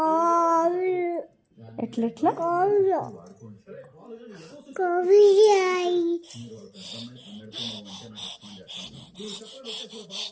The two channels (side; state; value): both; identical; correlation 1.00